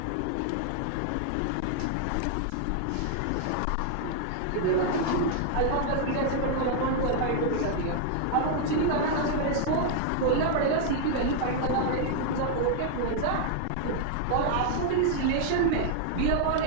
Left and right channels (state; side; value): different; both; correlation 0.00